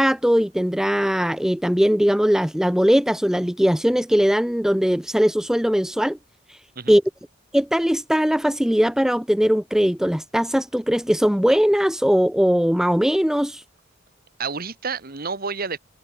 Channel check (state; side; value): normal; both; correlation 0.98